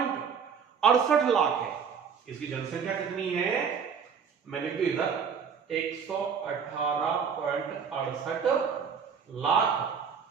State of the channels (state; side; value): quieter; left; 6.6 dB